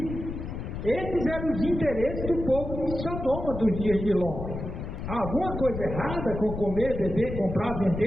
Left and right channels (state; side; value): noise; left; rumble, 7 dB below the sound